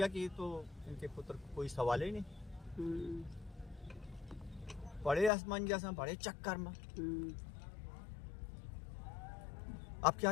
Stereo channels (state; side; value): drops out; right; at 5.3 s